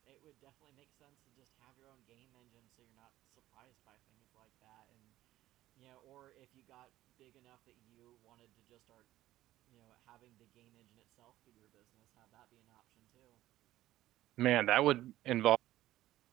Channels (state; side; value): quieter; left; 14.8 dB